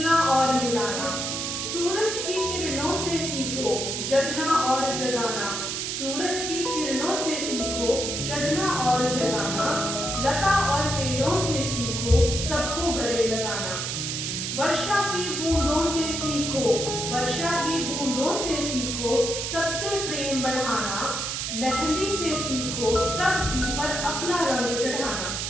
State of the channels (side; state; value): right; noise; hiss, 3 dB below the sound